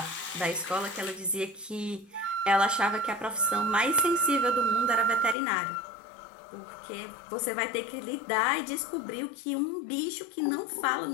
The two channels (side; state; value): right; drops out; at 5.4 s